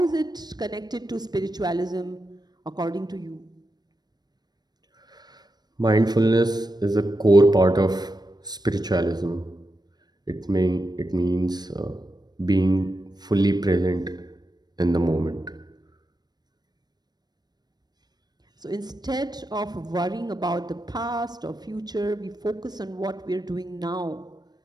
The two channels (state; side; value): late; left; 0.19 ms